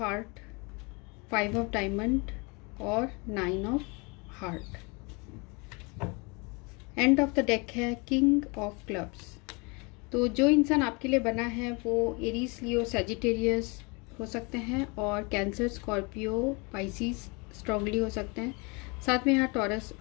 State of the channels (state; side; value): quieter; right; 29.7 dB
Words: 5 of diamond और 9 of heart. End of the deck है किंग ऑफ क्लब्स। तो जो इंसान आपके लिए बना है वो एरीज, लियो, सैजिटेरियस हो सकते हैं और कैंसर, स्कॉर्पियो, पाइसिस स्ट्रांगली हो सकते हैं। साथ में यहाँ टॉरस,